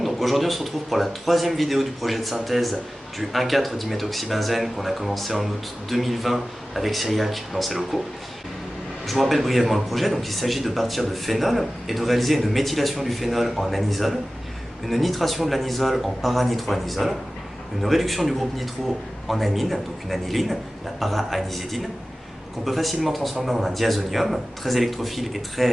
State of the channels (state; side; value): normal; both; correlation 0.96